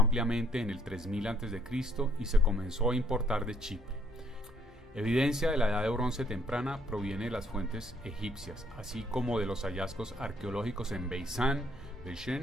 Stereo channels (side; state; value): both; normal; correlation 0.66